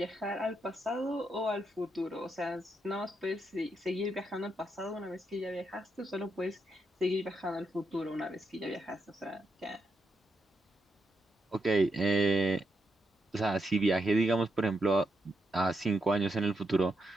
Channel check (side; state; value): both; normal; correlation 0.82